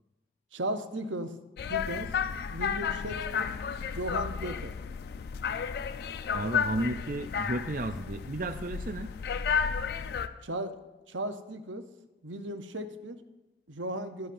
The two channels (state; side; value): quieter; right; 3.1 dB